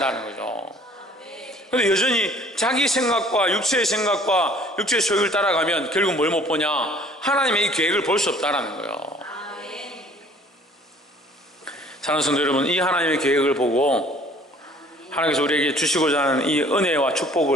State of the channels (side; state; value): both; normal; correlation 0.54